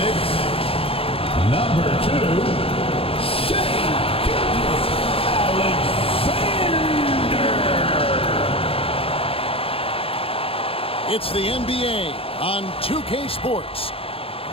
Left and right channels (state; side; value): late; right; 0.27 ms